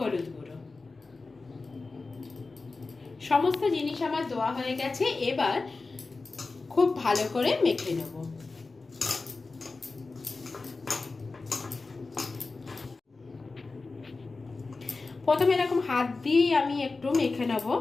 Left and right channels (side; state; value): right; quieter; 3.8 dB